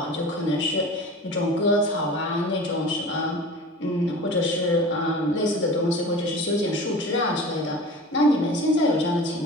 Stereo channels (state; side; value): normal; both; correlation 0.37